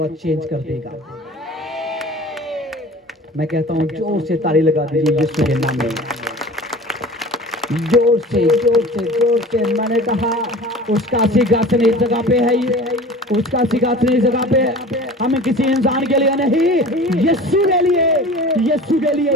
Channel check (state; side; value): normal; both; correlation 0.40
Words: चेंज कर देगा। मैं कहता हूँ जोर से ताली लगा दीजिए यीशु के नाम में। जोर से जोर से जोर से। मैंने कहा उसका सिंहासन इस जगह पे है, उसका सिंहासन इस जगह पे है। हम किसी इंसान के लिए नहीं, यीशु के लिए, यीशु के लिए,